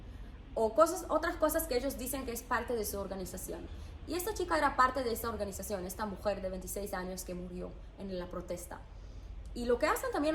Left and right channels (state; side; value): identical; both; correlation 1.00